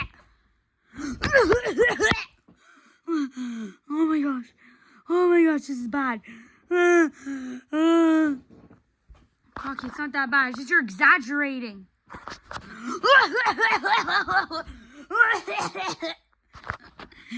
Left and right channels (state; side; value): identical; both; correlation 1.00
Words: Oh my gosh. Oh my gosh, this is bad. Crocky, it's not that bad. It's just you're exaggerating.